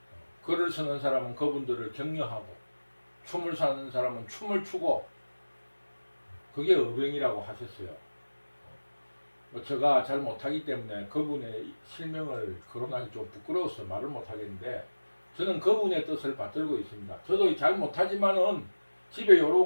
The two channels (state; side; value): inverted; both; correlation -1.00